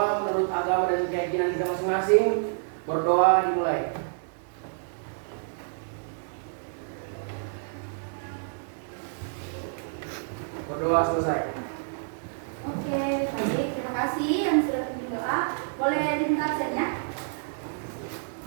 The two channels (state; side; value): silent; left; digital silence